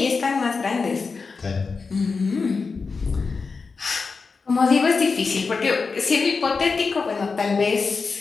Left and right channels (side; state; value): right; quieter; 4.7 dB